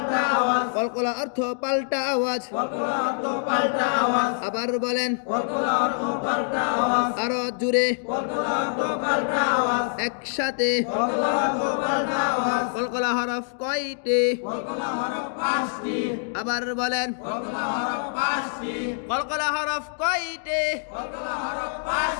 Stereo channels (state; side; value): silent; right; digital silence